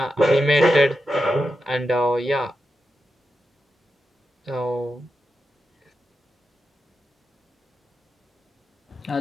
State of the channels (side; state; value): both; normal; correlation 0.88